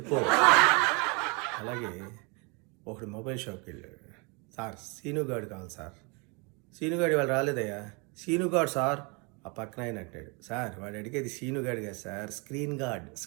అలాగే ఒకడు మొబైల్ షాప్కి వెళ్ళాడు. సార్ సీనుగాడు కావాలి సార్. సీనుగాడు వాళ్ళు రాలేదయ్యా. సీనుగాడు సార్. ఆ పక్కన ఆయన అంటాడు, సార్ వాడు అడిగేది సీనుగాడు కాదు సార్, స్క్రీన్ గార్డ్.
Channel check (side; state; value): left; quieter; 31.3 dB